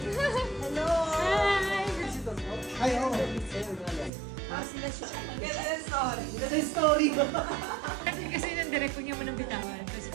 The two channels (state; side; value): drops out; left; at 4.1 s